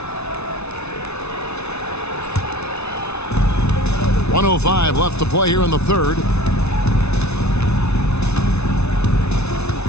.105 left to play here in the third.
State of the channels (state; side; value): late; right; 0.81 ms